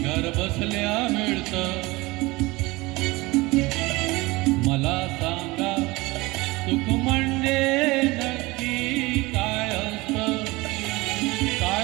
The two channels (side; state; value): left; quieter; 22.2 dB